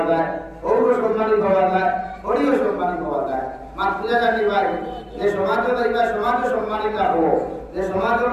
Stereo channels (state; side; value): identical; both; correlation 1.00